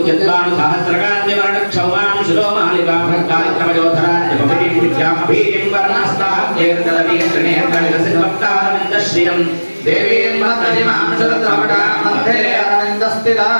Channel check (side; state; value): both; inverted; correlation -1.00